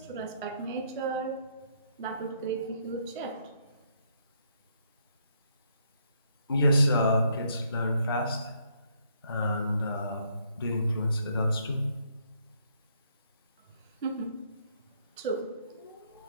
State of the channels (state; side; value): inverted; both; correlation -0.71